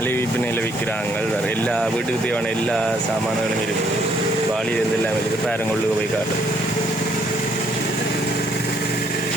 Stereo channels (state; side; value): normal; both; correlation 0.68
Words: விற்பனையில் விற்கிறாங்க. வேறு எல்லா வீட்டுக்கு தேவையான எல்லா சாமான்களும் இருக்குது. வாளியிலிருந்து எல்லாம் இருக்குது. பேரங்கொள்ளுக்கு போய் காட்டு.